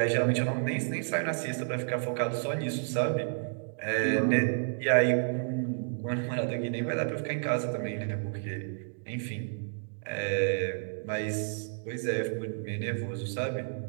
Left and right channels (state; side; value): silent; left; digital silence